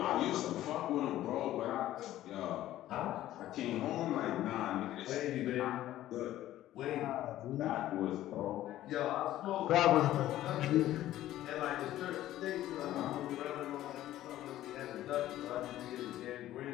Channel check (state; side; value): quieter; right; 13.9 dB